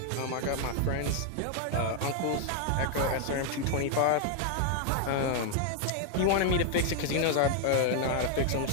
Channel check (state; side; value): different; both; correlation 0.00